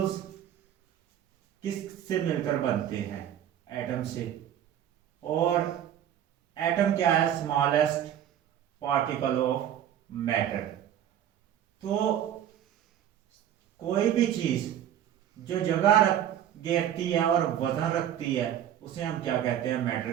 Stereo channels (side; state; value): left; quieter; 10.5 dB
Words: किस से मिलकर बनते हैं? एटम से। और एटम क्या है? Smallest particle of matter. तो कोई भी चीज जो जगह घेरती है और वजन रखती है उसे हम क्या कहते हैं?